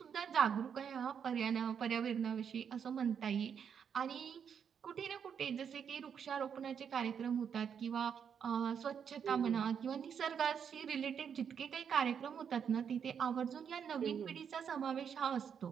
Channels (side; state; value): left; quieter; 7.5 dB